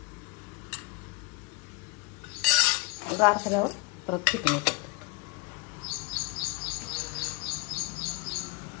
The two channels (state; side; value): quieter; right; 24.9 dB